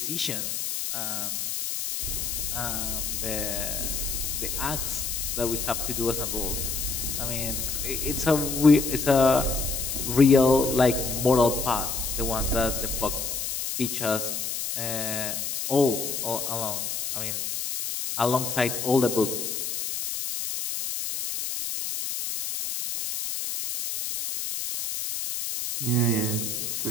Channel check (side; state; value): left; noise; hiss, 3 dB below the sound